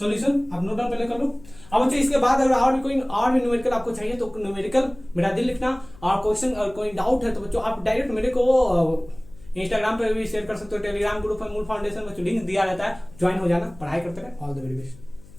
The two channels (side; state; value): left; noise; hum, 22 dB below the sound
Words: आप नोट डाउन पहले कर लो। अब बच्चों इसके बाद अगर और भी न्यूमेरिकल आपको चाहिए तो न्यूमेरिकल मेरा दिल लिखना, और क्वेश्चन और कोई डाउट है तो बच्चों आप डायरेक्ट मेरे को इंस्टाग्राम पे भी शेयर कर सकते हो, टेलीग्राम ग्रुप है मूल फाउंडेशन में लिंक दिया रहता है, ज्वाइन हो जाना, पढ़ाई करते रहे। All the very best.